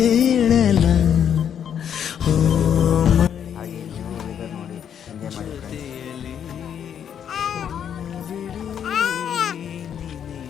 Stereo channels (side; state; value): right; quieter; 8.7 dB